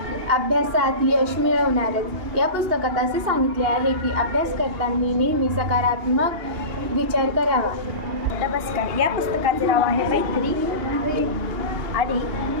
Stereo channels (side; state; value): left; late; 2.8 ms